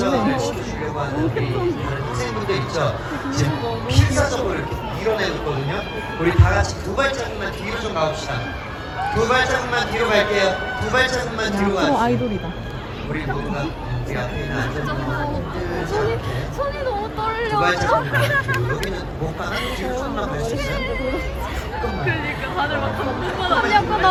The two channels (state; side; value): identical; both; correlation 1.00